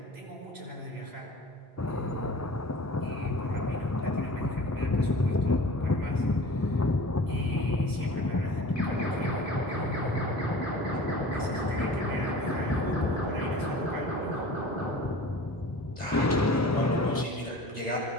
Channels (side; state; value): both; normal; correlation 0.41